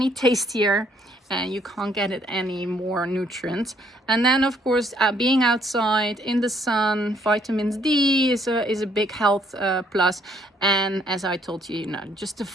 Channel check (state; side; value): normal; both; correlation 0.67